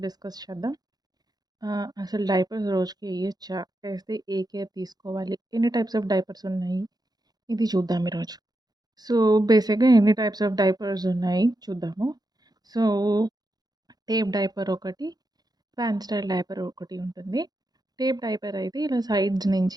చేద్దాం. అసలు డైపర్స్ రోజుకి వేయొచ్చా? వేస్తే ఏ కేర్ తీసుకోవాలి? ఎన్ని టైప్స్ ఆఫ్ డైపర్స్ ఉన్నాయి? ఇది చూద్దాం ఈరోజు. సో, బేసిక్‌గా ఎన్ని టైప్స్ ఆఫ్ డైపర్స్ ఉన్నాయి చూద్దాము. సో, టేప్ డైపర్ ఒకటి, ఫ్యాన్ స్టైల్ డైపర్ ఒకటి ఉంటుంది. టేప్ డైపర్ అయితే ఇలా సైడ్స్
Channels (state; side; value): late; left; 0.19 ms